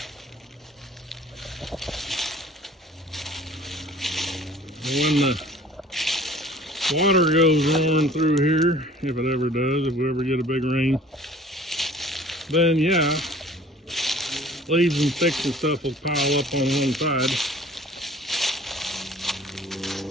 When the water goes roaring through here, if it ever does, if we ever get a big rain, then yeah, leaves and sticks and stuff will pile up on one side.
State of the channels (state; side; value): normal; both; correlation 0.50